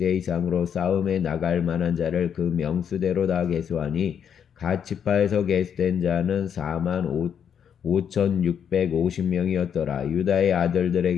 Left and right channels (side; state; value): right; quieter; 8.1 dB